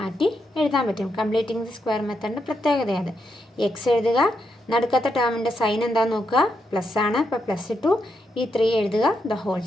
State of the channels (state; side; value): normal; both; correlation 0.82